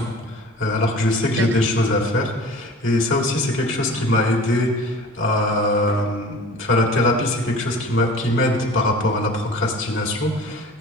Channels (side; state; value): both; normal; correlation 0.42